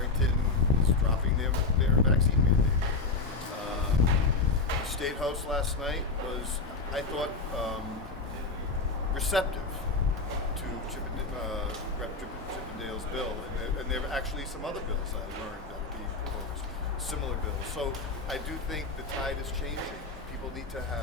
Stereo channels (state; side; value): quieter; right; 4.0 dB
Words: is dropping their vaccine mandate. State House last night was, I thought, receptive to Rep. Chippendale's bill. And there are actually some other bills I learned that are being proposed, similar bills. So I do think the tide is changing. People need to